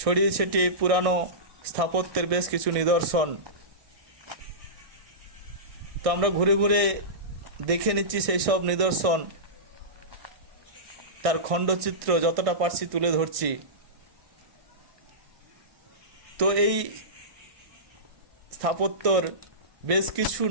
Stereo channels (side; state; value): left; late; 1.6 ms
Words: ছড়িয়ে ছিটিয়ে পুরানো স্থাপত্যের বেশ কিছু নিদর্শন। তো আমরা ঘুরে ঘুরে দেখে নিচ্ছি সেই সব নিদর্শন, তার খণ্ডচিত্র যতটা পারছি তুলে ধরছি। তো এই স্থাপত্যর বেশ কিছু